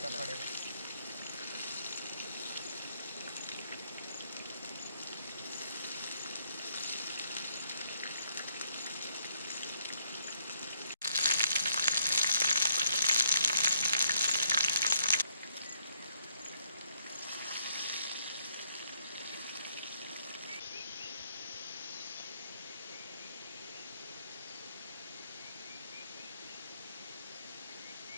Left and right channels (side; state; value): both; inverted; correlation -0.71